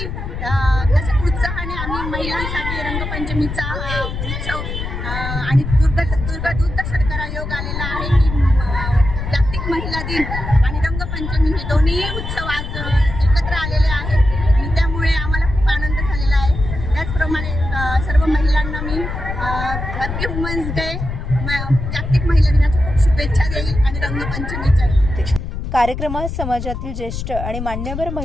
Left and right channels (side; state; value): left; noise; rumble, 5 dB below the sound